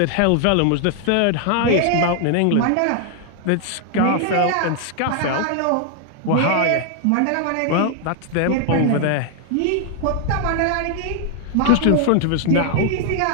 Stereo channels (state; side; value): different; both; correlation 0.00